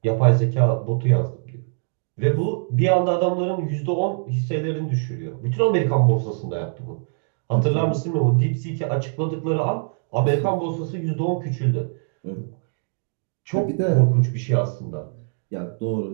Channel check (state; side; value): silent; left; 61 dB below the other